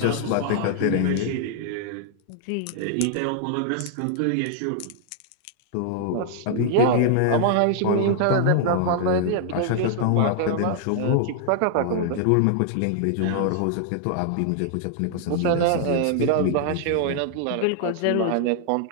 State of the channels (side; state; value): both; different; correlation -0.01